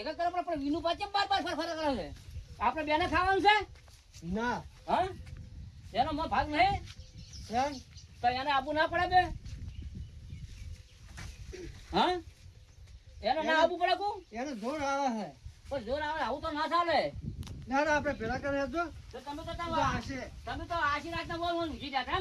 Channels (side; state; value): both; identical; correlation 1.00